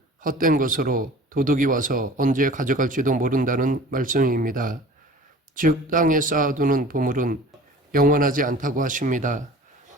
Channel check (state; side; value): normal; both; correlation 0.43